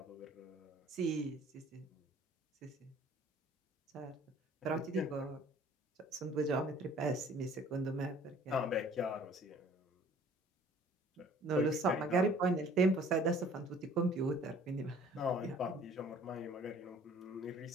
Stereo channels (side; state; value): both; normal; correlation 0.53